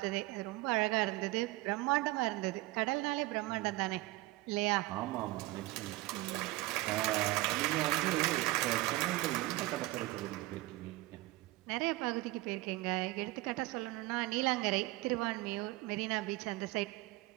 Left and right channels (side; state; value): left; quieter; 19.6 dB